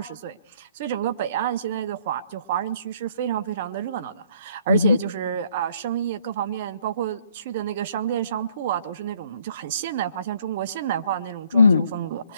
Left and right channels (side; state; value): both; inverted; correlation -0.62